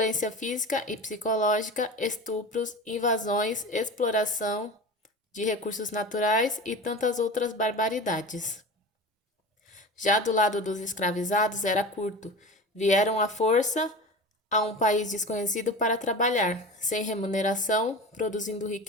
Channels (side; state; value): both; normal; correlation 0.32